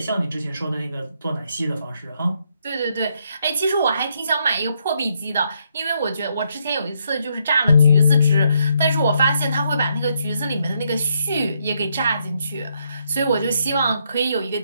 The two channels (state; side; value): inverted; both; correlation -0.75